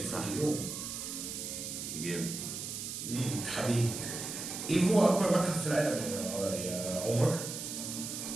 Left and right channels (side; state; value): right; noise; hiss, 6 dB below the sound